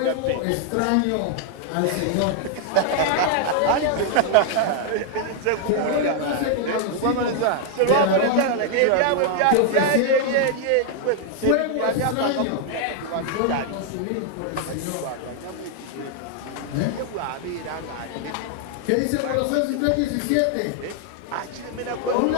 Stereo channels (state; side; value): different; both; correlation 0.00